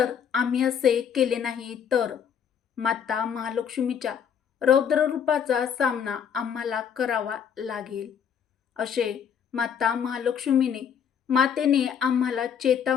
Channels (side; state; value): right; quieter; 7.8 dB